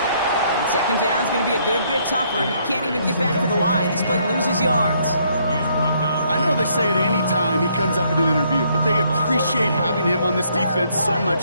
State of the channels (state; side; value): inverted; both; correlation -0.69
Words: And second down's going to be a good bit tougher. He can't even get back to the line. This play loses yards. I know they say it any time he comes up in an interview, but they appreciate having him on this defense so